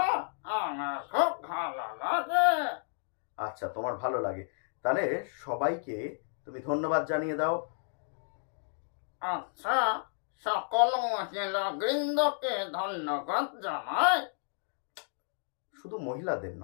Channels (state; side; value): silent; right; digital silence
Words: আমার খুব ভালো লাগে। আচ্ছা, তোমার ভালো লাগে, তাহলে সবাইকে তুমি ধন্যবাদ জানিয়ে দাও। আচ্ছা, সকল মহিলা বৃন্দকে ধন্যবাদ জানাই। শুধু মহিলাদের